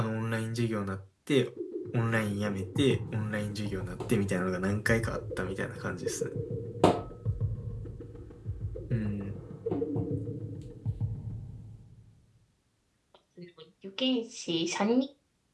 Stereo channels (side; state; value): both; identical; correlation 1.00